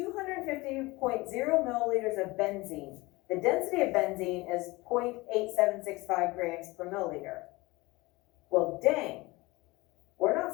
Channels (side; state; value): right; quieter; 22.2 dB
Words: milliliters of benzene. The density of benzene is 0.8765 grams per milliliter. Well, dang. We're not